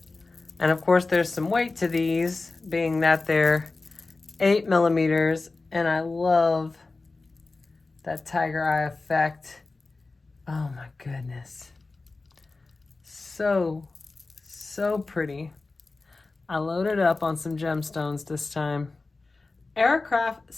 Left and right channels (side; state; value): right; quieter; 3.6 dB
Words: And of course there's some weight to these, being that they're 8 millimeters, and I love that tiger eye effect. Oh my goodness. So pretty. I loaded up on some gemstones this time. Aircraft